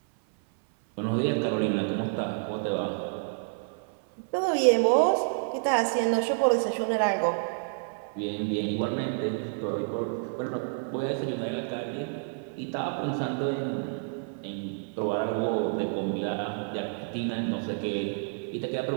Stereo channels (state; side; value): silent; left; 57 dB below the other